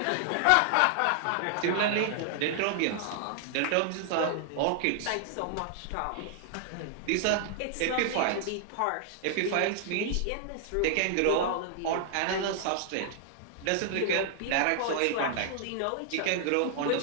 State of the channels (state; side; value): different; both; correlation 0.00